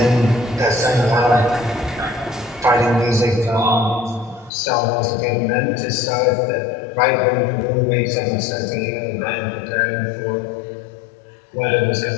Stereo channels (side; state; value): right; drops out; at 4.5 s